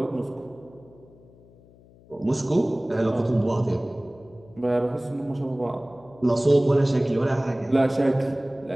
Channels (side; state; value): left; noise; hum, 25 dB below the sound